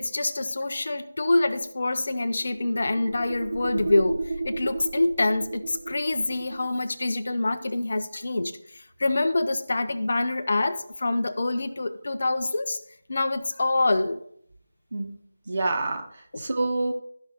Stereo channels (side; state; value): both; inverted; correlation -0.96